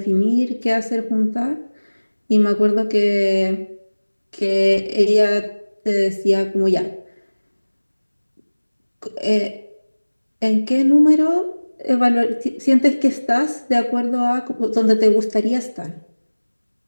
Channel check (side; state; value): both; inverted; correlation -1.00